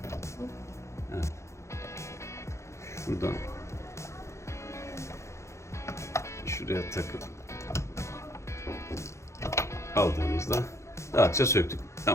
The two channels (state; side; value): late; right; 0.14 ms